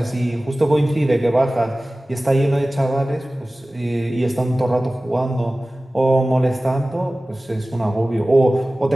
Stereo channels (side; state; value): both; normal; correlation 0.97